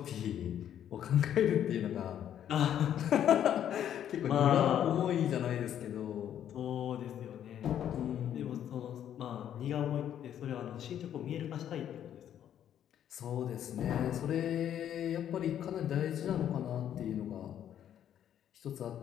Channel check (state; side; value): quieter; right; 10.2 dB